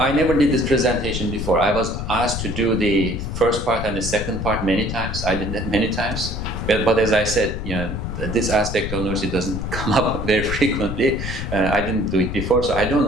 never did this presentation before. I was asked to do the first part and the second part many times. I did that many times. But as I said, this aspect of Nursi doesn't come up very frequently. I didn't do it before, so I don't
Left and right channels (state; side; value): noise; left; rumble, 5 dB below the sound